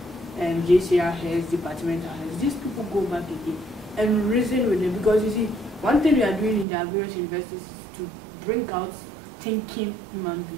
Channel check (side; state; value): left; drops out; at 6.7 s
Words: JCR heads, departmental heads. These people go back again and reason with them, because you see, one thing we are doing in the various universities is to bring out thinking human